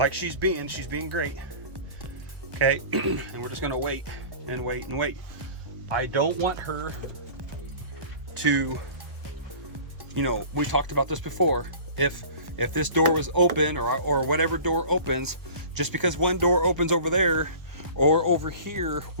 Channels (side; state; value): left; late; 1.1 ms